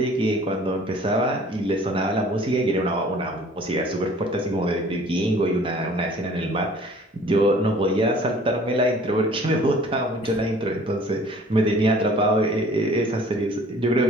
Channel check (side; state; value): both; normal; correlation 0.51